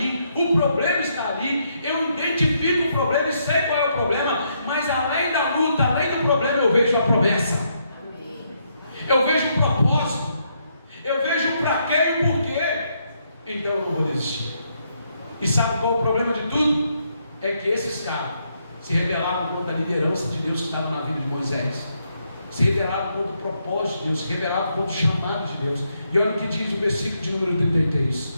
o problema está ali, eu identifico o problema e sei qual é o problema, mas além da luta, além do problema, eu vejo a promessa. Eu vejo o propósito. Eu vejo o para quê e o porquê. Então eu não vou desistir. E sabe qual é o problema de tudo? É que esses caras se rebelaram contra a liderança de Deus que estava na vida de Moisés, se rebelaram contra o propósito de Deus, se rebelaram contra o chamado de Deus. E olha o que diz o versículo de número 33.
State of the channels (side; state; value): both; inverted; correlation -0.76